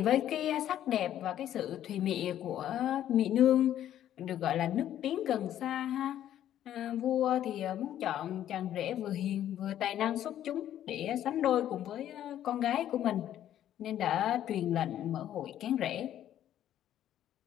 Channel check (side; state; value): right; quieter; 11.4 dB